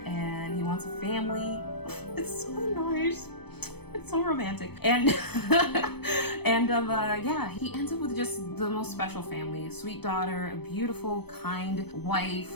and he wants a family. It's so nice. It's so romantic. And yeah, he ends up with just the most special family, a sweet daughter, a beautiful, kind wife.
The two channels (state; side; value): late; right; 0.97 ms